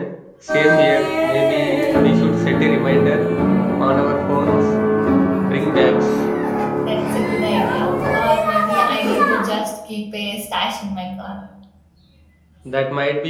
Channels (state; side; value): identical; both; correlation 1.00